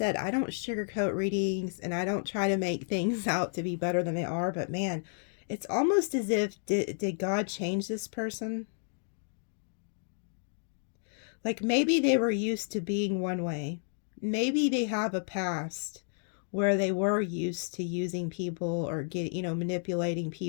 I don't sugarcoat readings and I don't try to make things out to be better than they are. But, man, it's almost as if, did God change this person? Like, maybe they were used to being one way. Maybe they have a past where they were used to using people or manipulating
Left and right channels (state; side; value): silent; right; 57 dB below the other